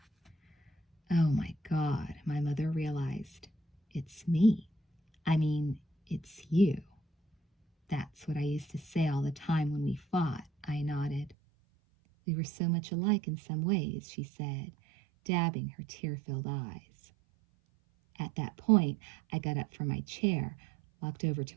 Oh my God, my mother realized. It's me. I mean, it's you. That's what I used to say all the time when we fought, I nodded. We were so much alike in some ways, she said, dabbing her tear-filled eyes. At that point, I got up from my chair, walked over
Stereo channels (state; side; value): drops out; left; at 11.4 s